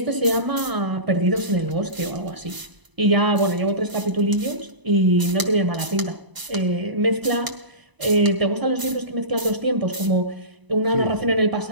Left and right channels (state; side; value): late; left; 1.0 ms